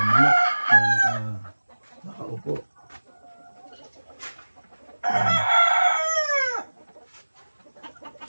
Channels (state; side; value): inverted; both; correlation -1.00